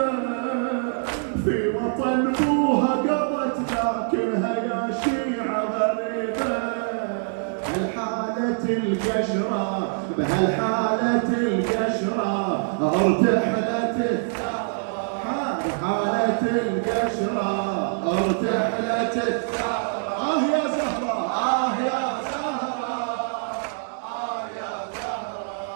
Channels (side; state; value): left; silent; digital silence